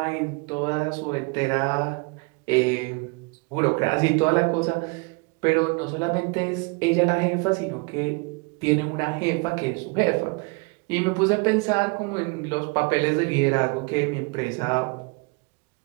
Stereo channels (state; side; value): quieter; left; 30.4 dB